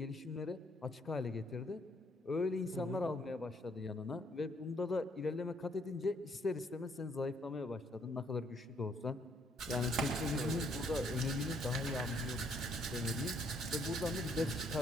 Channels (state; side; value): normal; both; correlation 0.68